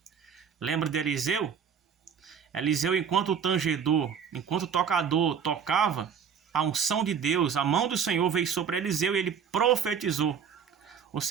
Lembra de Eliseu? Eliseu, enquanto o tangedor, enquanto o tocador tocava, a unção de Deus, a mão do Senhor veio sobre Eliseu e ele profetizou. Ou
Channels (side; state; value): left; quieter; 7.3 dB